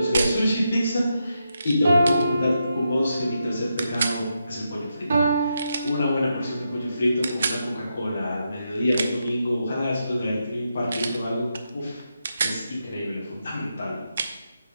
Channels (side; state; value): both; inverted; correlation -0.84